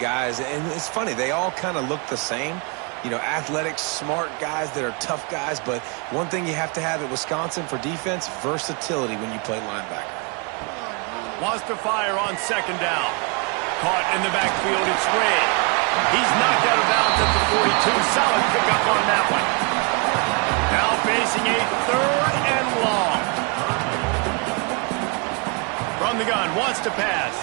and it's funny, they all kind of look the same. You know, athletic, smart guys that are tough guys, but one thing you have to have at Wisconsin for defense, versatility when you play linebacker. Wants to fire on second down. Caught in the backfield, it's Red. He's knocked out of bounds at the 42. Solid pickup on that one. Now facing a third and long. From the gun, wants to pass.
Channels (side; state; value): left; quieter; 33.1 dB